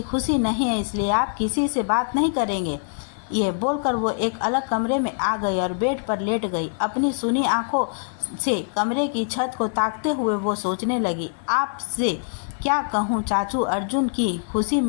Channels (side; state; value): right; silent; 62 dB below the other